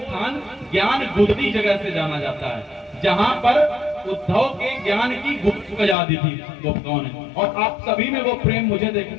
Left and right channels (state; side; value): drops out; right; at 6.0 s